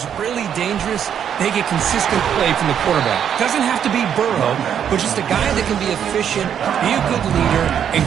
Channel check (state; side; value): quieter; left; 8.8 dB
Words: really dangerous, they get consistent play from the quarterback. Doesn't have to be Burrow, but just a guy that can be efficient, be a good leader, and